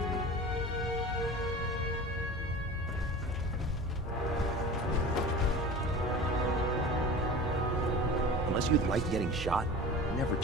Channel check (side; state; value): both; normal; correlation 0.35